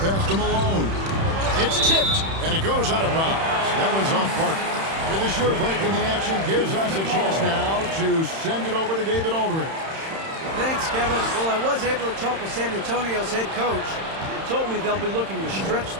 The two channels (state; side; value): late; left; 31 ms